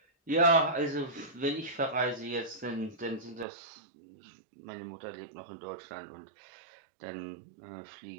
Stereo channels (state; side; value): drops out; left; at 3.5 s